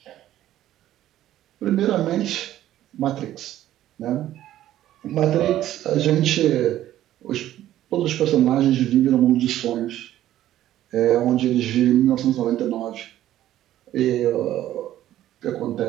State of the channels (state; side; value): quieter; left; 13.0 dB